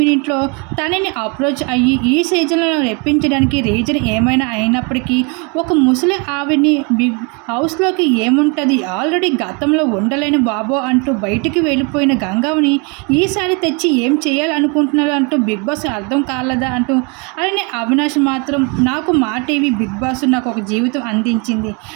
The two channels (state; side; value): quieter; left; 32.4 dB